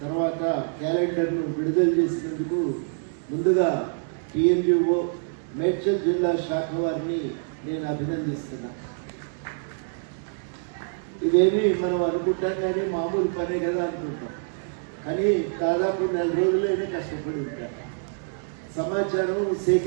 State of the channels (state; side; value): silent; left; digital silence